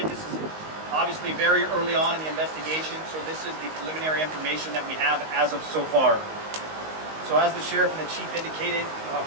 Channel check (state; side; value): late; left; 19 ms